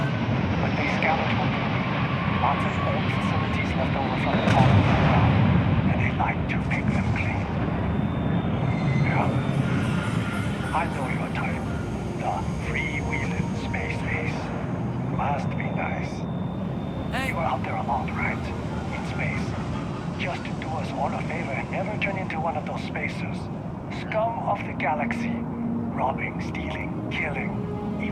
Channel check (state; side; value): identical; both; correlation 1.00